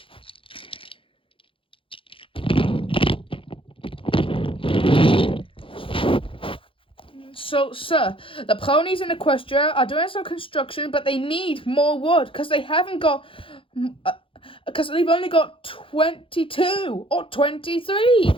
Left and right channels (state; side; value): late; right; 0.25 ms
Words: So, sir, the ponies in Equestria are doing some construction, but they need more wood because they haven't got, because they've only got 22 or 23.